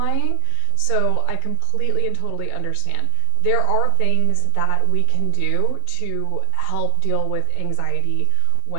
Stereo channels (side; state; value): both; different; correlation 0.00